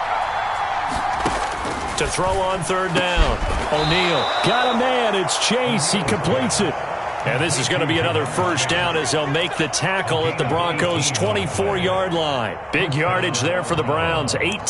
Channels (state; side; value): identical; both; correlation 1.00